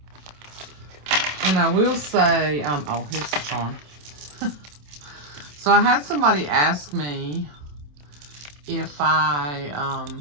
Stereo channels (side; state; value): left; late; 27 ms